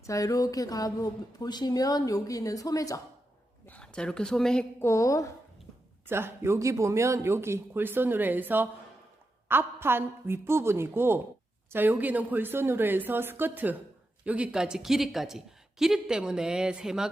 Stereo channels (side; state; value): both; normal; correlation 0.88